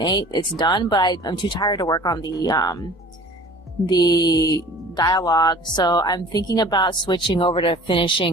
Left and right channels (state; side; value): normal; both; correlation 0.45